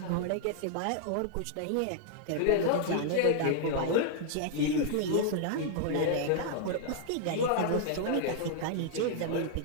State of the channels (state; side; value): different; both; correlation -0.01